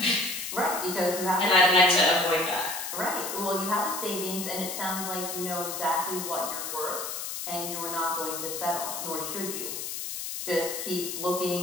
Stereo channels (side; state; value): left; noise; hiss, 5 dB below the sound